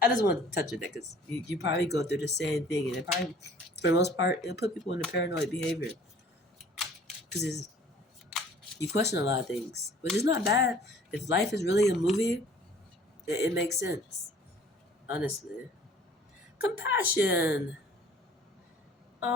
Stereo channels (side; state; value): both; normal; correlation 0.52